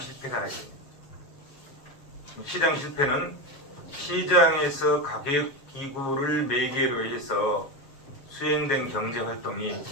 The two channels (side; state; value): right; late; 7.1 ms